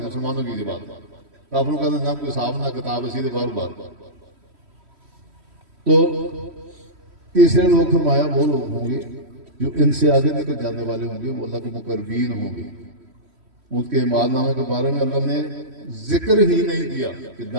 مسلمانوں کی بات. کافروں کا نہ کوئی حساب نہ کتاب ہے، سیدھے بار بار. تو تیسرے لوگ فرمایا وہ لوگ ہوں گے جو ان سے آگے نکل جانے والے ہوں گے، وہ اللہ کے مقربین ہوں گے. ان کے اعمال نامے کے بارے میں اللہ نے ذکر ہی نہیں کیا کہ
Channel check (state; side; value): late; left; 3.1 ms